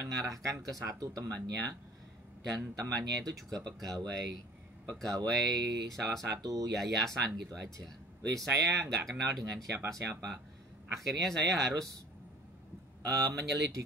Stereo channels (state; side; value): normal; both; correlation 0.49